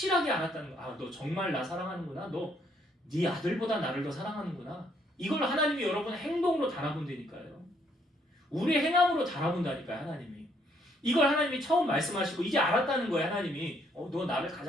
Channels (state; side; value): normal; both; correlation 0.69